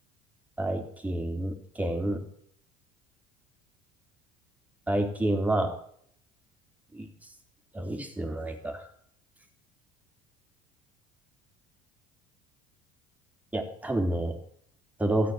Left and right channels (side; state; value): both; normal; correlation 0.87